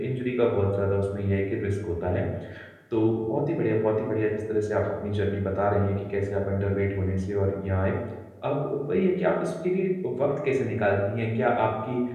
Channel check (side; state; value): both; identical; correlation 1.00